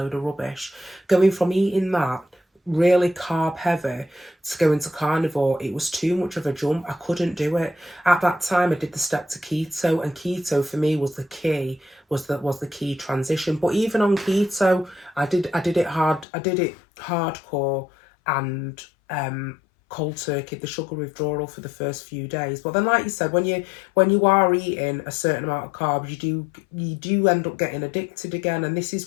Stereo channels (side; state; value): right; drops out; at 16.2 s